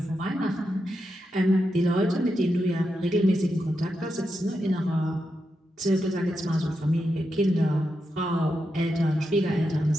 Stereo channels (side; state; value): both; normal; correlation 0.86